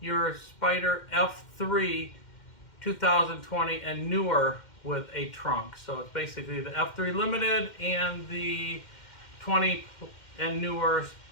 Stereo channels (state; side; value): late; right; 2.1 ms